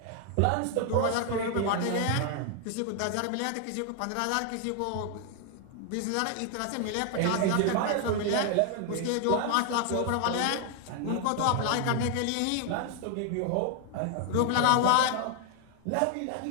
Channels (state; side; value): different; both; correlation 0.00